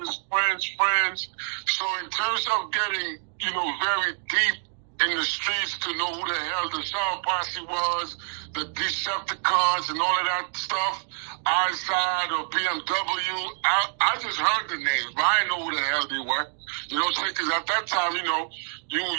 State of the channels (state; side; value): silent; left; digital silence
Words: friends. So in terms of getting, very deep in the streets to know who the hell the Shower Posse was, the Decepticons and all of that stuff, Eyeside or BMW, I just heard the names, but I didn't know who the hell they were. You know what I'm saying? Because at that time, you